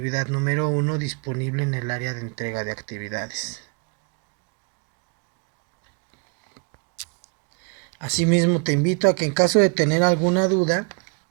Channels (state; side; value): quieter; left; 34.0 dB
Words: número 1 disponible en el área de entrega de actividades. Asimismo, te invito a que en caso de tener alguna duda